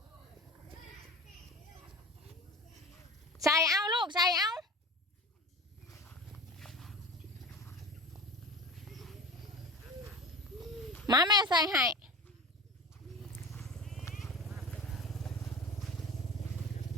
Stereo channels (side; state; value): both; normal; correlation 0.34